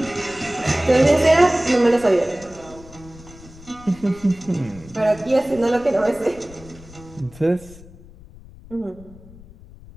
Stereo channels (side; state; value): left; noise; rumble, 20 dB below the sound